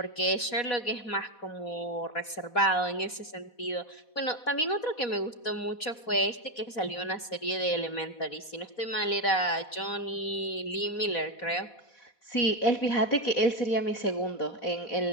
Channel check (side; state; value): right; late; 4.1 ms